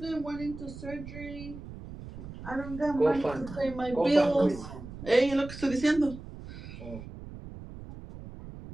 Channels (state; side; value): noise; right; rumble, 13 dB below the sound